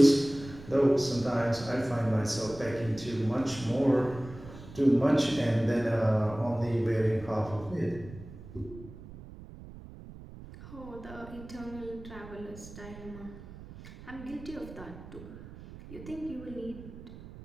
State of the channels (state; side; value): noise; right; rumble, 15 dB below the sound